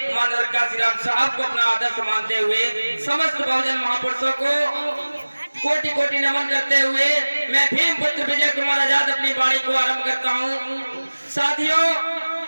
मानव काशीराम साहब को अपना आदर्श मानते हुए समस्त बहुजन महापुरुषों को कोटि कोटि नमन करते हुए मैं भीम पुत्र विजय कुमार आजाद अपनी वाणी को आरंभ करता हूँ। साथियों,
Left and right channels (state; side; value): inverted; both; correlation -1.00